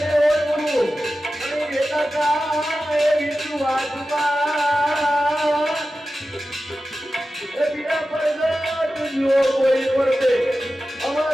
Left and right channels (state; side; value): normal; both; correlation 0.93